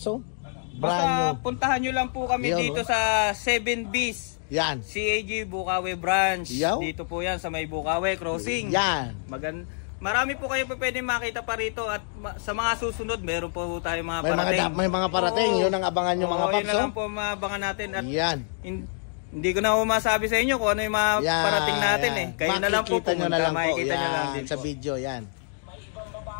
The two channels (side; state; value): right; silent; 61 dB below the other